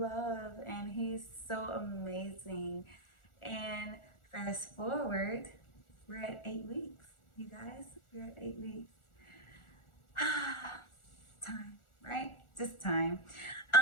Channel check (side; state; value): right; late; 1.4 ms